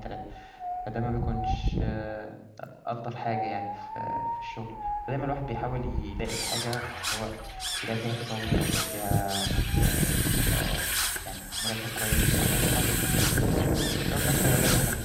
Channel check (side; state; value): both; identical; correlation 1.00